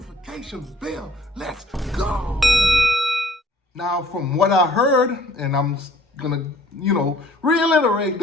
bell. Let's go. Now, from what I heard, and I'm gonna, reiterate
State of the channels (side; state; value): both; normal; correlation 0.56